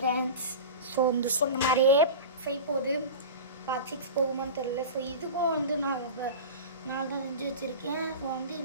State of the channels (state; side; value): inverted; both; correlation -0.31